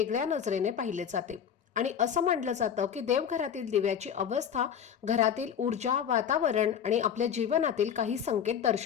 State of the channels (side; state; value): right; quieter; 8.3 dB